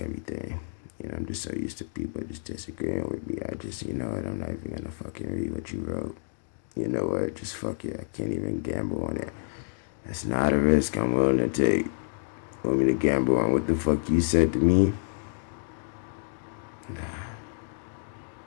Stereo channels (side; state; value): right; silent; digital silence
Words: You know, I'm just so used to people just disagreeing with me. I just, you know what, I'm not even gonna fucking read what you wrote. You know what, just fuck it. I can't even gamble on it. That's not a risk I'm willing to take. Want me to gamble on what the fuck you said to me? Nah.